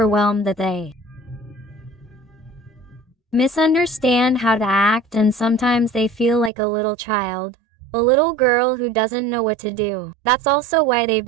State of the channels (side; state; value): left; drops out; at 6.5 s